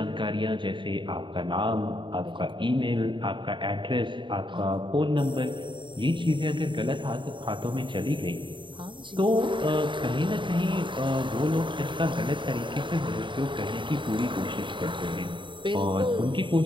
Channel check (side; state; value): left; late; 0.23 ms